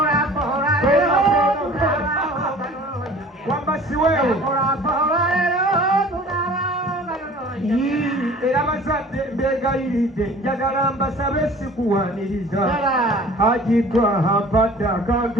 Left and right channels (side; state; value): both; normal; correlation 0.47